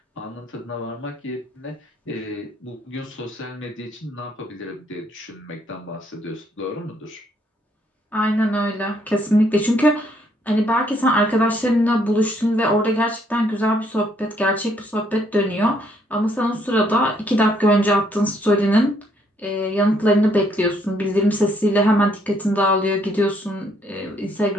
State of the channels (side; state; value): both; normal; correlation 0.69